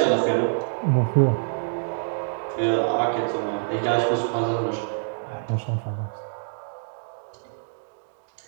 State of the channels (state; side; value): silent; left; digital silence